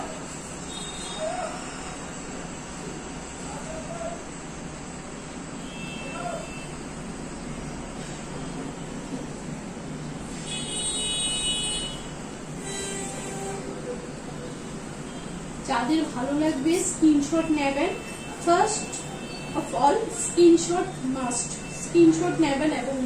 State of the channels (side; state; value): both; identical; correlation 1.00